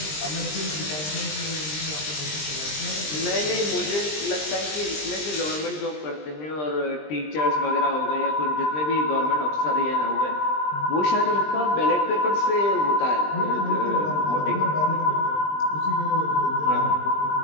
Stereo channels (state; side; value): late; right; 20 ms